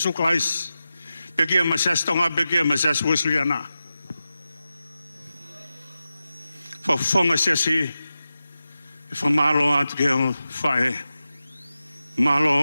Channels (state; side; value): inverted; both; correlation -0.93